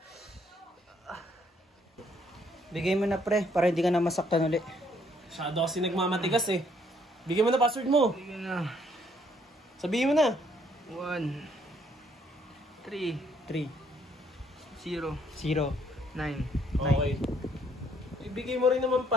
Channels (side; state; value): both; normal; correlation 0.67